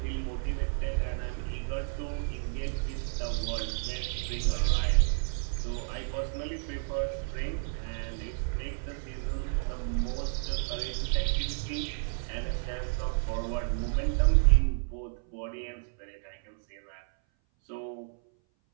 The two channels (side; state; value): left; silent; 57 dB below the other